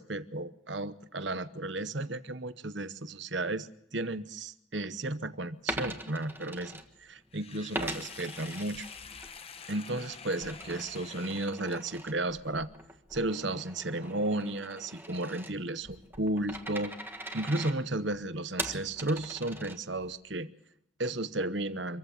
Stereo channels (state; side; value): normal; both; correlation 0.31